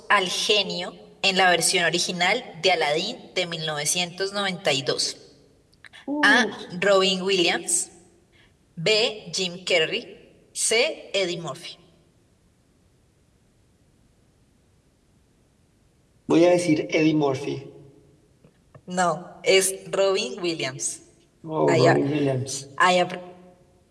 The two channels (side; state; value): both; identical; correlation 1.00